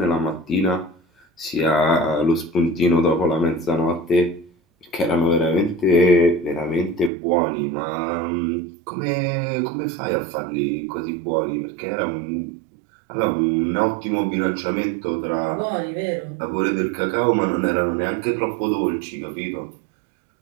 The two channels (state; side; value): drops out; left; at 7.1 s